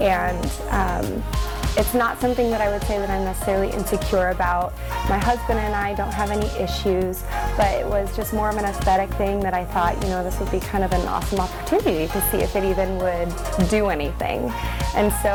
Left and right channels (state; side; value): identical; both; correlation 1.00